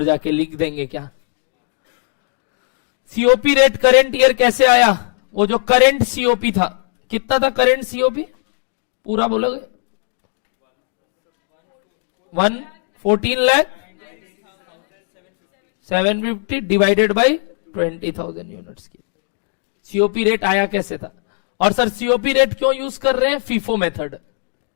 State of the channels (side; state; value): right; silent; digital silence